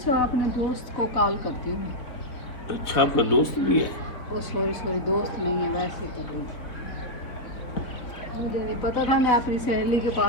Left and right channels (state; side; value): late; right; 3.8 ms